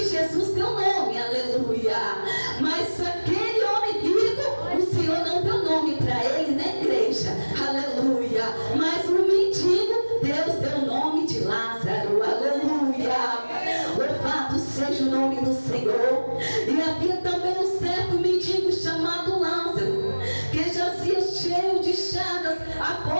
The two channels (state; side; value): inverted; both; correlation -1.00